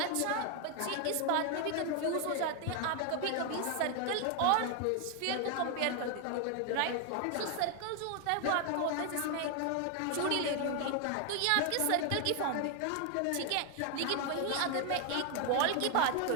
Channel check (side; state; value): both; different; correlation 0.01